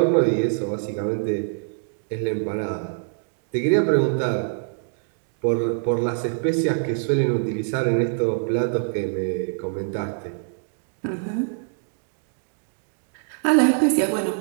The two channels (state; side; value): silent; left; digital silence